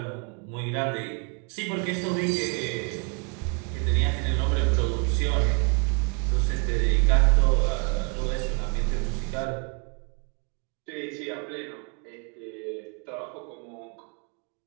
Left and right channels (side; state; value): left; quieter; 34.8 dB